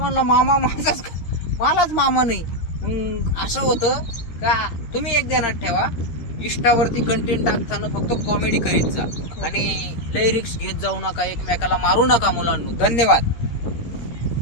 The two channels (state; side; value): late; right; 13 ms